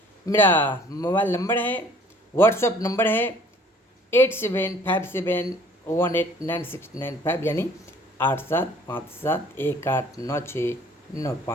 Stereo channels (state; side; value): normal; both; correlation 0.55